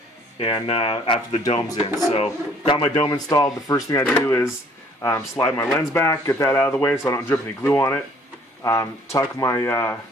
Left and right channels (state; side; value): normal; both; correlation 0.58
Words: and after the dome's in. So got my dome installed. The first thing I do is slide my lens back, get that out of the way so I don't drip any glue on it. Tuck my